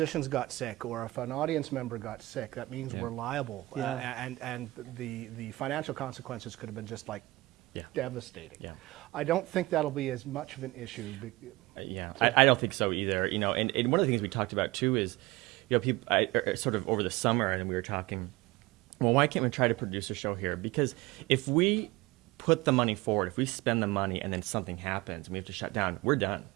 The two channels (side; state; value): left; quieter; 20.3 dB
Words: got sick or if an audience member got sick, that means we're liable. And the financial consequences could have been just like devastating. Yeah. I don't think that'll be as much of an issue. I don't think so either. And one of the things we talked about too is, people sort of over the summer, and we were talking, well, why can't we try to produce a show here? Because if we put the money forward, if we spend the money and then something happens and we have to shut down, we're done.